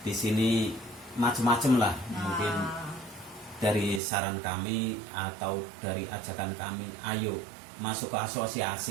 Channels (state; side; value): drops out; left; at 4.0 s